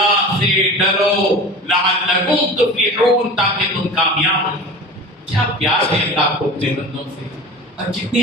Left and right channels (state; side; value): normal; both; correlation 0.35